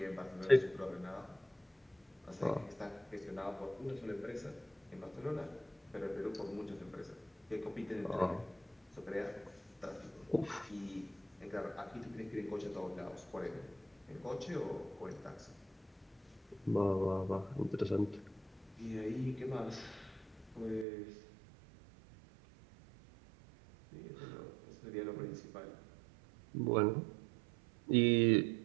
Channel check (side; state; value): left; drops out; at 20.9 s